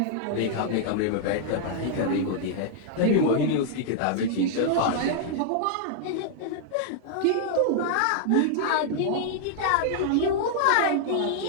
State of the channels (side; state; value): both; different; correlation -0.01